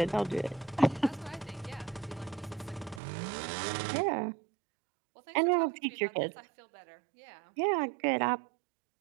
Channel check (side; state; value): left; drops out; at 3.0 s